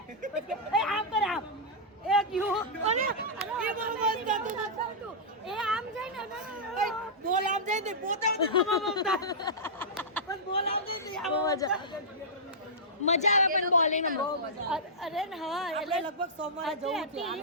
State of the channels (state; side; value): normal; both; correlation -0.12